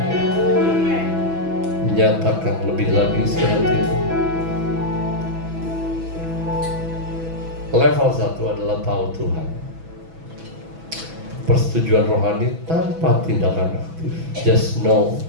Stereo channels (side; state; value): left; late; 6.1 ms